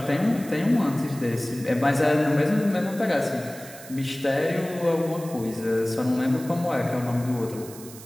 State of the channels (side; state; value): right; noise; hiss, 17 dB below the sound